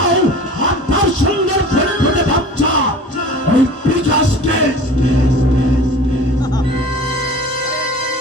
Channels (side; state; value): both; normal; correlation 0.41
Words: আর তার সুন্দর ফুটফুটে বাচ্চা ওই বিকাশকে